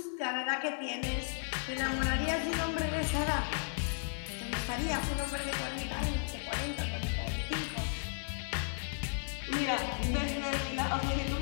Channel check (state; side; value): silent; right; digital silence